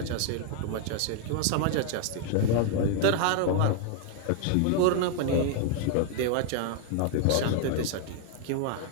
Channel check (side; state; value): both; different; correlation 0.00